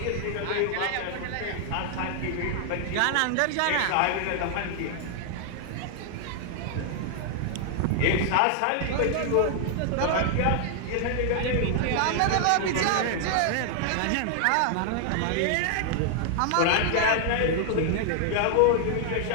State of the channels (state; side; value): different; both; correlation 0.00